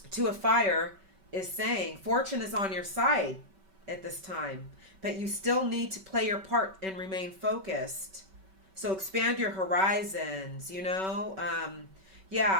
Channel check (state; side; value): late; left; 5.2 ms